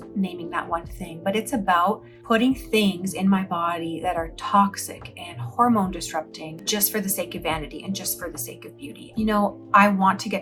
naming that one thing, but it's about putting things in my body that are toxic and hormone disrupting just for the sake of vanity and just for the sake of beauty. I want to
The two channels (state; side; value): identical; both; correlation 1.00